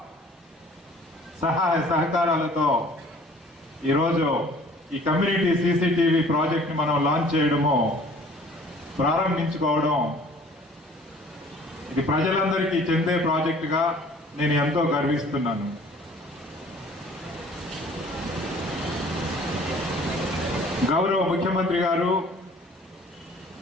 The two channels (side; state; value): both; normal; correlation 0.52